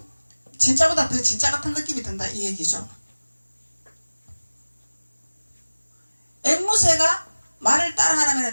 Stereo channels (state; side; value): inverted; both; correlation -1.00